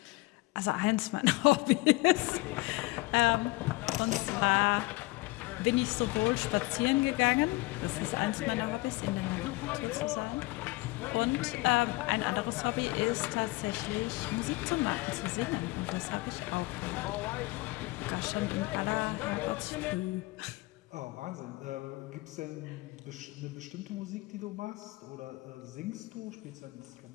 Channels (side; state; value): right; quieter; 22.2 dB